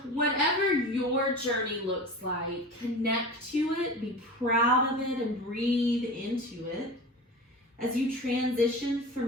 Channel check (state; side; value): normal; both; correlation 0.32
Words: whatever your journey looks like, connect to it, be proud of it, and breathe into it as you transition